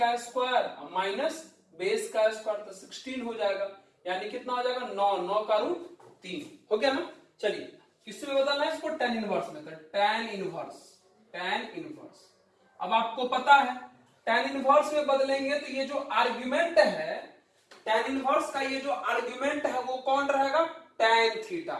स्क्वायर माइनस बेस का स्क्वायर, तो 16 हो जाएगा। यानी कितना हो जाएगा, 9 का रूट 3 हो गया ना। चलिए किसमें बदलना है इसको, tan इनवर्स में। तो tan इनवर्स अब आपको पता है tan इनवर्स में बदलेंगे तो ये जो आर्गुमेंट है, tan इनवर्स का ये जो आर्गुमेंट है वो कौन रहेगा, tan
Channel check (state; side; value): identical; both; correlation 1.00